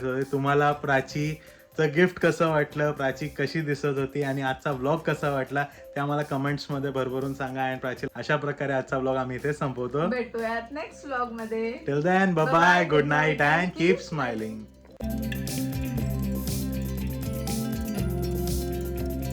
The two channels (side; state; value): both; identical; correlation 1.00